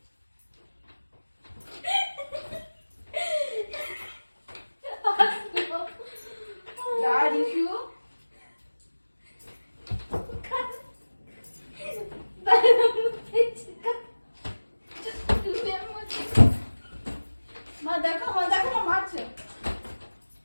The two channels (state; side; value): inverted; both; correlation -1.00